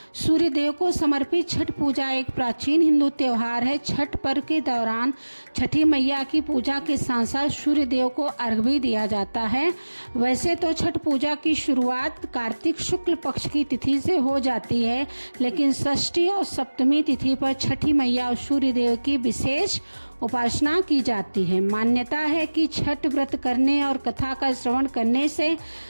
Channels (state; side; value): inverted; both; correlation -1.00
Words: सूर्य देव को समर्पित छठ पूजा एक प्राचीन हिंदू त्योहार है। छठ पर्व के दौरान छठी मैया की पूजा के साथ साथ सूर्य देव को अर्घ्य भी दिया जाता है। वैसे तो छठ पूजा की शुरुआत कार्तिक शुक्ल पक्ष की तिथि से हो जाती है, लेकिन षष्ठी और सप्तमी तिथि पर छठी मैया और सूर्य देव की विशेष उपासना की जाती है। मान्यता है कि छठ व्रत करने और कथा का श्रवण करने से